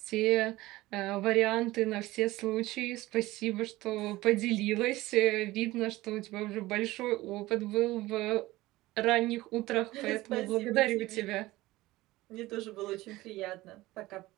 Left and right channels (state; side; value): quieter; left; 18.3 dB